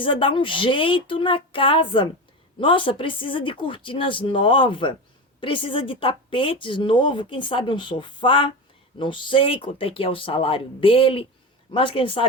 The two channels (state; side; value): normal; both; correlation 0.23